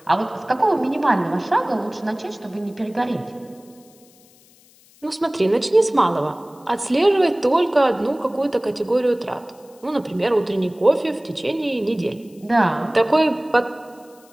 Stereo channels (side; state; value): left; noise; hiss, 29 dB below the sound